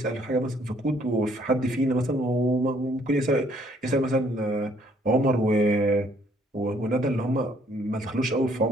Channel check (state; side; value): normal; both; correlation 0.64